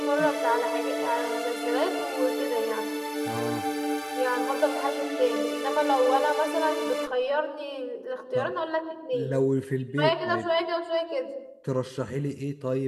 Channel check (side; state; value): both; identical; correlation 1.00